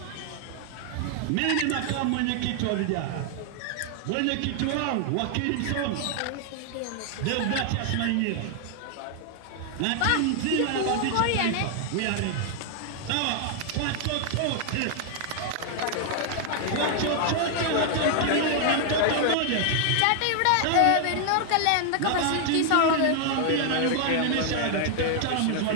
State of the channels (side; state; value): both; different; correlation 0.00